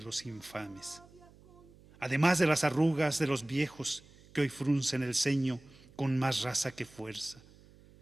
infames. Además de las arrugas de los viejos que hoy fruncen el ceño con más raza que fuerza,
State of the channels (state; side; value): noise; right; hum, 25 dB below the sound